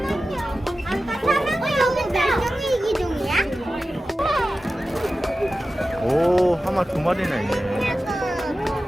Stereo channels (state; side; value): normal; both; correlation 0.94